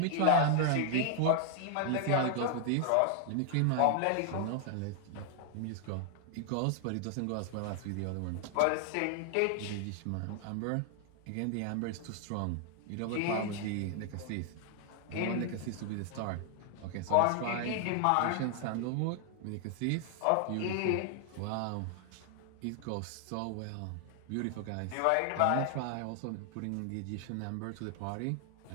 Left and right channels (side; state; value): both; different; correlation 0.00